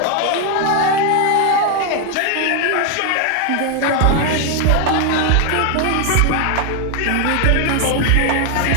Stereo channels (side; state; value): both; different; correlation 0.00